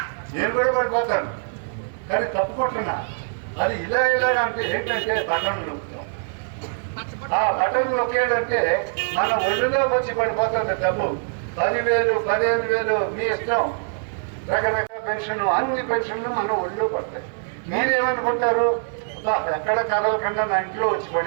నేను కూడా పడిపోతాను. కానీ తప్పుకుంటున్నా అది ఇలా అంటే ఏంటంటే బటన్ నొక్కుతాం. ఆ బటన్ నొక్కేటంటే మన ఒళ్ళులోకి వచ్చి పడిపోతుంది డబ్బు. 10,000 15,000 మీ ఇష్టం. రకరకాల పెన్షన్, అన్ని పెన్షన్లు మన ఒళ్ళో పడతాయి. మీరేమనుకుంటారు? ఎక్కడ కదలకుండా నా ఇంట్లో వచ్చి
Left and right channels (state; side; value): silent; left; 58 dB below the other